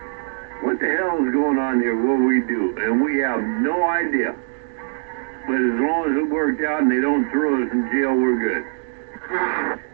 what the hell is going on here? What do we do? And we have no idea. But as long as it worked out and they don't throw us in jail, we're good.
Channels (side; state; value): left; silent; digital silence